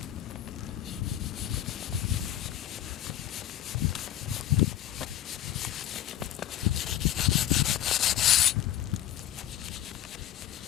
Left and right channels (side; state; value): right; quieter; 12.0 dB